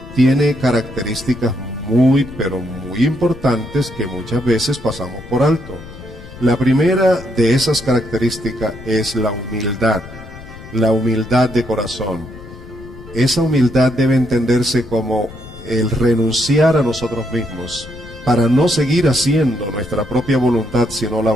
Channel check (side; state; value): left; noise; rumble, 16 dB below the sound